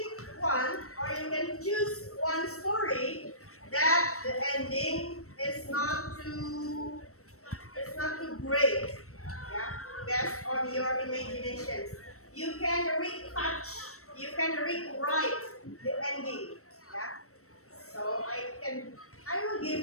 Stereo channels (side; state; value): right; late; 0.64 ms